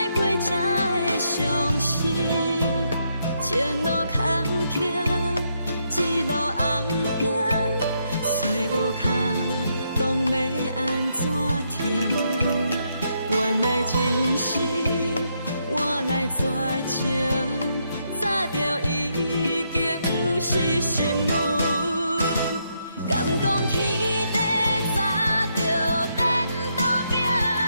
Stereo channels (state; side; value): inverted; both; correlation -0.78